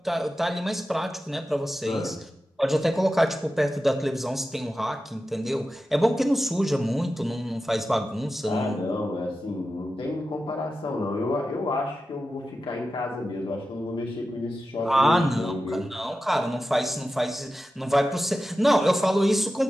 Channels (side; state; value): both; normal; correlation 0.92